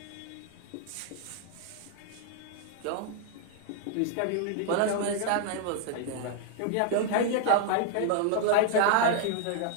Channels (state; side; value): different; both; correlation -0.01